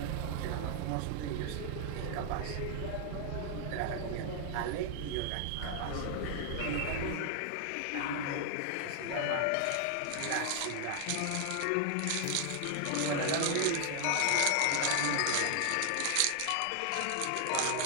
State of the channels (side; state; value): both; different; correlation 0.00